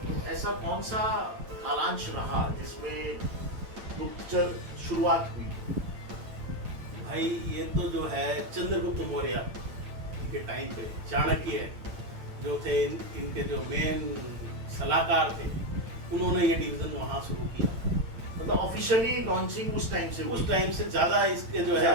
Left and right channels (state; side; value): late; left; 8.9 ms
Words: तो ऐसा कौन सा कालांश रहा जिसमें गुप्तचर शुरुआत हुई? भाई ये तो जो है चंद्रगुप्त मौर्य के टाइम पे चाणक्य जो थे, इनके जो मेन सलाहकार थे, उन्होंने ये डिवीजन वहाँ शुरू किया था। मतलब ऑफिशियली लॉन्चिंग उस टाइम से ज्यादा इसके जो